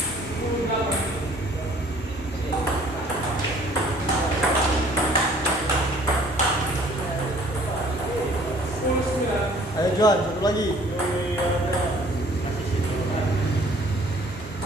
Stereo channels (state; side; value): normal; both; correlation 0.55